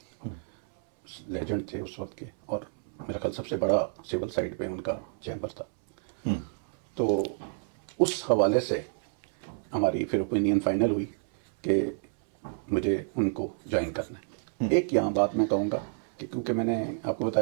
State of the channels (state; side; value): silent; left; 58 dB below the other